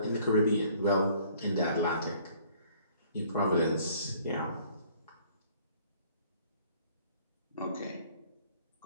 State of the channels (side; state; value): both; inverted; correlation -0.58